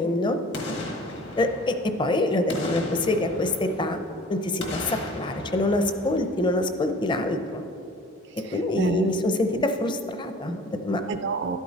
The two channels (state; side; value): normal; both; correlation 0.46